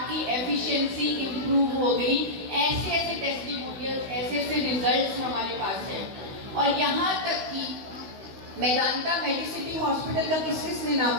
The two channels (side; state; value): left; late; 16 ms